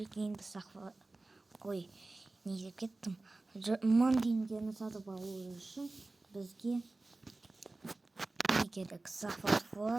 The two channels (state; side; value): quieter; left; 3.1 dB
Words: Ой, не деп кеттім. 1000 теңгені сатып алу үшін бізге не керек? Захват